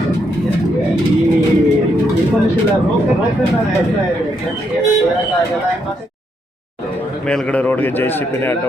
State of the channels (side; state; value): both; normal; correlation 0.77